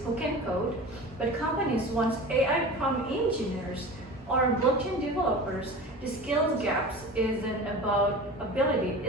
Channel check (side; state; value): both; normal; correlation 0.34